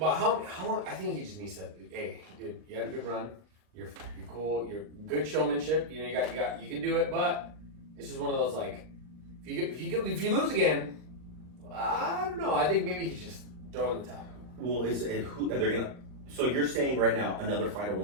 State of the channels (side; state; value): left; late; 39 ms